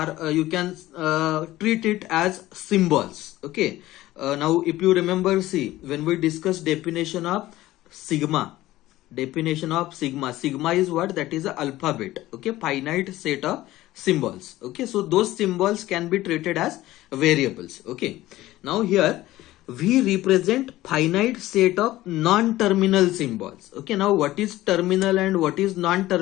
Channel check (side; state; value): right; quieter; 16.2 dB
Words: you can treat it as symbols. Okay, now if you remember, see, when we discuss definition of sigma, sigma is what? That is a alphabet. Okay, finite set of symbols. Okay, so those symbols can be treated as variables. Okay, now here we represent finite set of non-terminal symbols. Okay, now what is terminal and what is